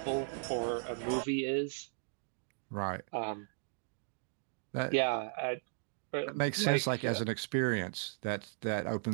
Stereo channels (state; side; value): silent; left; digital silence